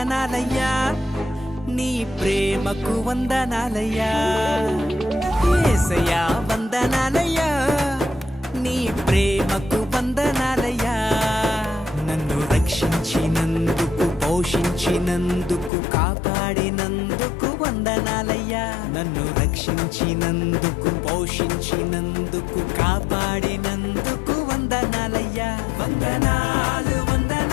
నీ ప్రేమకు వందనాలయ్యా యేసయ్యా వందనాలయ్యా నీ ప్రేమకు వందనాలయ్యా నన్ను రక్షించినందుకు పోషించినందుకు కాపాడినందుకు వందనాలయ్యా నన్ను రక్షించినందుకు పోషించినందుకు కాపాడినందుకు వందనాలయ్యా వందనాలు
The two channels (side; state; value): right; drops out; at 15.7 s